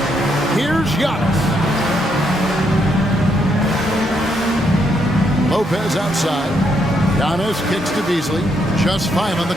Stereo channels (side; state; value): both; normal; correlation 0.76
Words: Here's Giannis. Lopez outside. Giannis kicks to Beasley. Just 5 on the